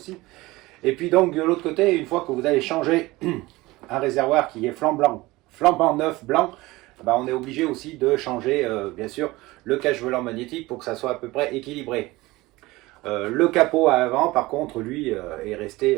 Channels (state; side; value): quieter; left; 20.2 dB